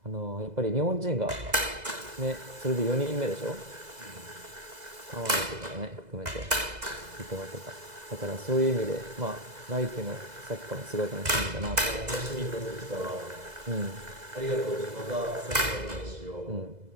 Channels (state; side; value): late; left; 2.0 ms